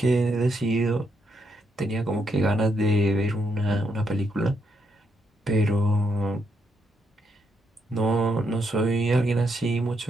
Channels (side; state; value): both; normal; correlation 0.78